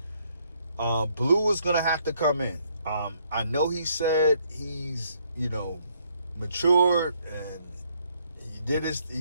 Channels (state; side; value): inverted; both; correlation -0.69